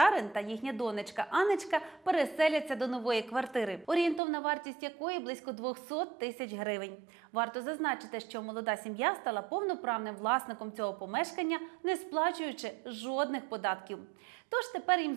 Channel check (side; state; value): left; drops out; at 4.2 s